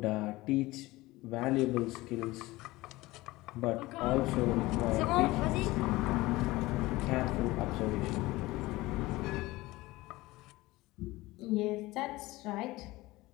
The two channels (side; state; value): right; quieter; 19.6 dB